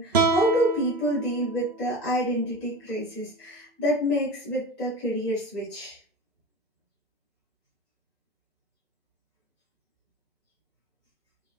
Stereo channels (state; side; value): normal; both; correlation 0.31